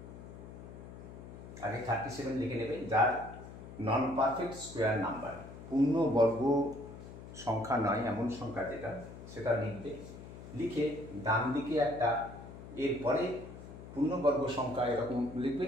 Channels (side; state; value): left; noise; hum, 14 dB below the sound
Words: আগে 37 লিখে নেবে, যার নন পারফেক্ট স্কোয়ার নাম্বার, পূর্ণবর্গ সংখ্যা নয় এমন সংখ্যা যেটা, সেটা লিখবে। লিখে ডান দিকে একটা, এরপরে পূর্ণবর্গ সংখ্যা এরকম লিখবে,